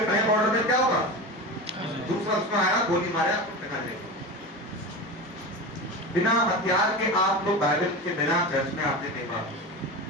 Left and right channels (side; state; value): both; normal; correlation 0.26